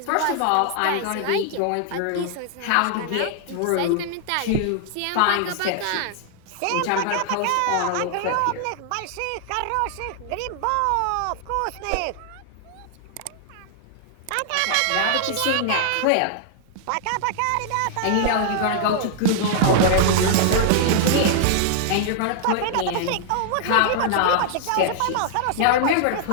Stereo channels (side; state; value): both; different; correlation -0.01